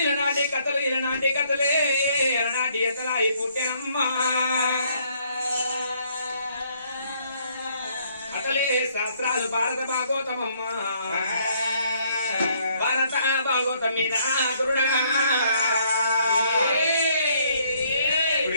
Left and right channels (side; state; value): both; inverted; correlation -0.67